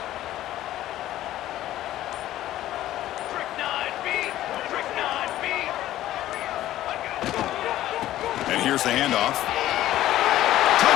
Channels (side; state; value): right; quieter; 13.9 dB